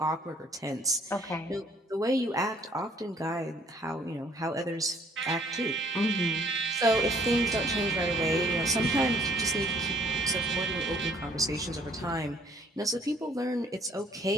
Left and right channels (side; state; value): both; normal; correlation 0.60